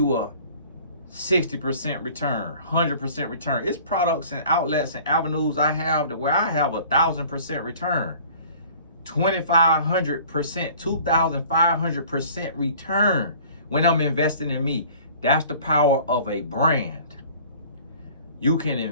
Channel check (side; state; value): both; inverted; correlation -0.49